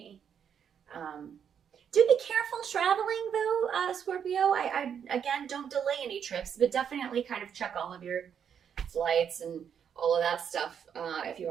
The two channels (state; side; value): quieter; left; 8.0 dB